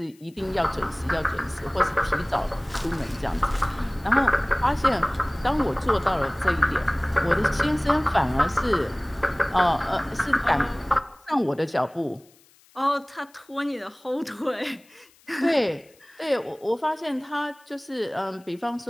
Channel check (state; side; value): noise; left; hiss, 30 dB below the sound